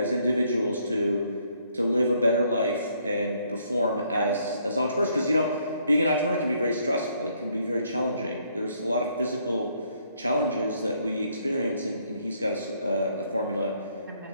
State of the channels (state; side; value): inverted; both; correlation -0.69